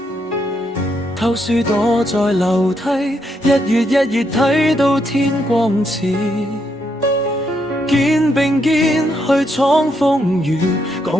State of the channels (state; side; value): normal; both; correlation 0.77